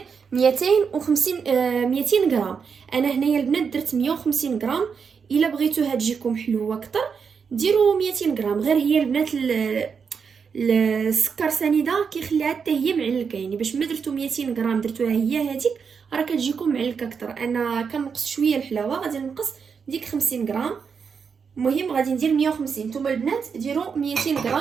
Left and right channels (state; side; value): quieter; left; 6.1 dB